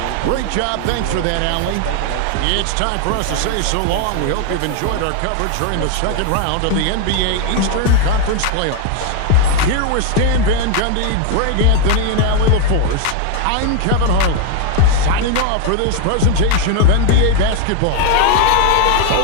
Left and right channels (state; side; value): different; both; correlation 0.01